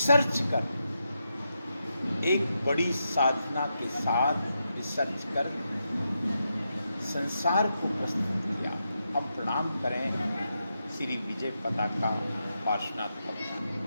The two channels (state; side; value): inverted; both; correlation -0.85